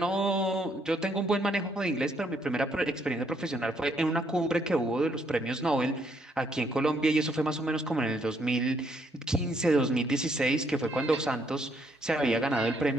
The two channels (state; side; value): normal; both; correlation 0.71